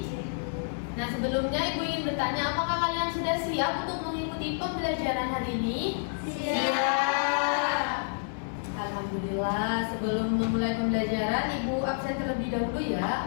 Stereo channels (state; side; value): silent; right; digital silence